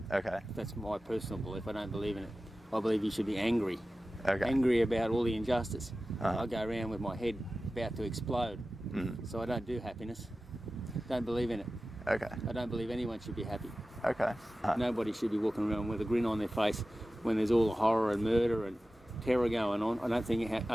Okay. That's my personal belief. I don't believe in it. I believe you should be angry. Okay. Angry about all the injustice. Uh-huh. I go around with my head about to explode. So I don't do happiness. Don't believe in it. Okay. I don't believe anyone should be happy. Okay. Nobody should be walking around with a grin on their face when there's all the horror and murder and terror going on. I don't think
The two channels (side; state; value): both; normal; correlation 0.95